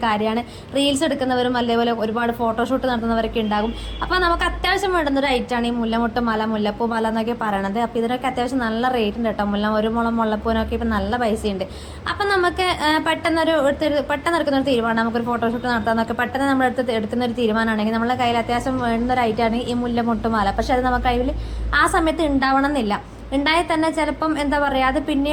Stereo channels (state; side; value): identical; both; correlation 1.00